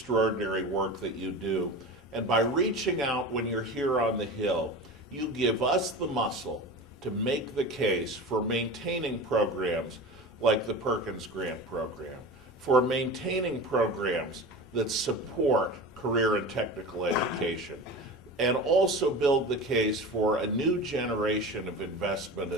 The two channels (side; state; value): both; normal; correlation 0.31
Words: work that you do, and by reaching out when you're here on the Hill, you give us the muscle to make the case for maintaining programs like the Perkins Grant Program, for maintaining programs that support career and technical education, and also build the case for a new generation of investment